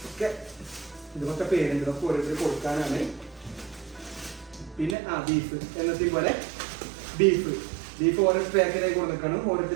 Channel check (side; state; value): left; drops out; at 5.0 s